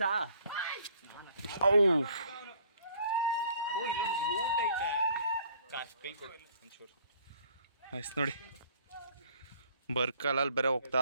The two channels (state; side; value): inverted; both; correlation -0.58